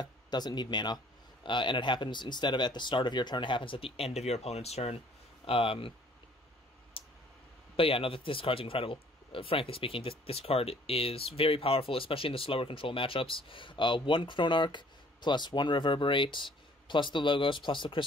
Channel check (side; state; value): both; normal; correlation 0.57